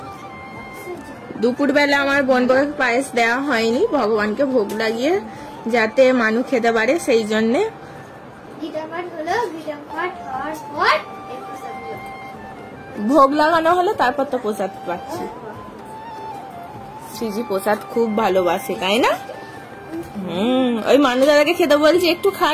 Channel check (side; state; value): both; identical; correlation 1.00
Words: দুপুর বেলা আমার বোনকে পায়েস দেওয়া হয়নি, ভগবানকে ভোগ লাগিয়ে যাতে মানু খেতে পারে, সেই জন্যে ভোগ লাগানো হলো, তারপর তো প্রসাদ পাচ্ছি। সিজি প্রসাদ খুব ভালোবাসে, তাই না? ওই মানু দাদাকে খেতে বলছি, একটু খা